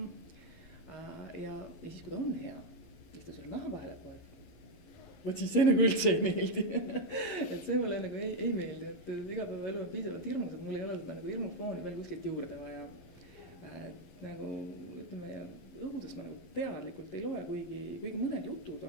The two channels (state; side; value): late; right; 11 ms